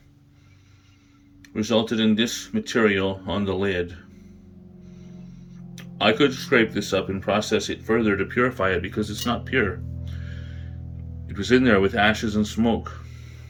resulted in this material on the lid. I could scrape this up and process it further to purify it because it's not pure. It was in there with ashes and smoke.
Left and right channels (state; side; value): identical; both; correlation 1.00